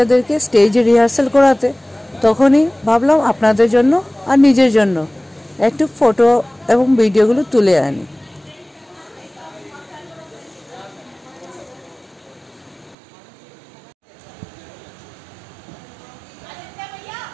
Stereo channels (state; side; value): drops out; left; at 13.0 s